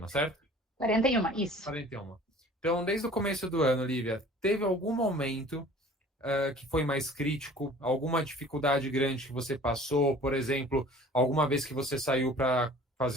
certo? 41, isso. 41. Então, desde o começo do ano, Lívia, teve algum momento que foi mais crítico? Alguma dificuldade grande que você passou? Por exemplo, alguma vez que você saiu para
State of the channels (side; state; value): both; normal; correlation 0.47